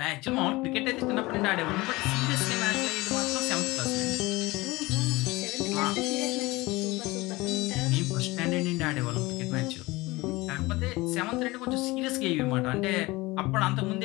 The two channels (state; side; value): quieter; right; 21.5 dB